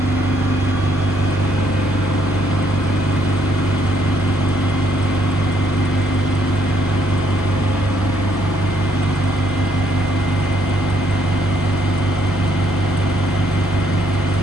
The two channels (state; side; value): normal; both; correlation 0.71